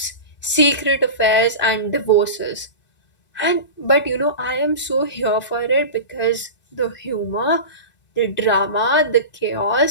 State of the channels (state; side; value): late; right; 2.6 ms